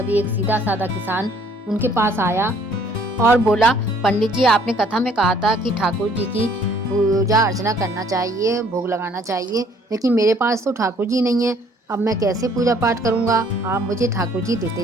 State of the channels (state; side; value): normal; both; correlation 0.60